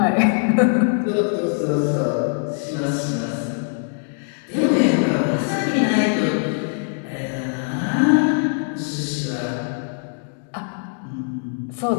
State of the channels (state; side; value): silent; right; 59 dB below the other